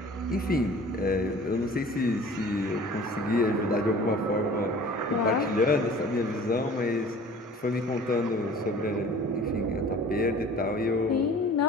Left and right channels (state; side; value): normal; both; correlation 0.46